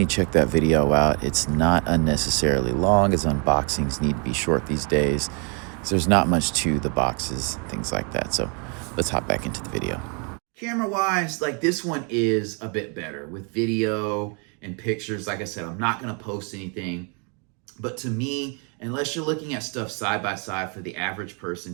check that video out. It's not unnecessarily long, as unboxings need to be short these days. So there's not much to the boxes, things like that. So let's hop back into the video. Camera-wise, like this one is a bit better with video and pictures. Like I said, I'm not going to post anything. But to me, unless you're looking at stuff side by side for the average person,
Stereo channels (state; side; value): quieter; left; 35.9 dB